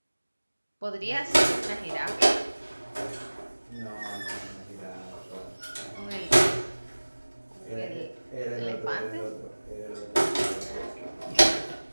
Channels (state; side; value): inverted; both; correlation -1.00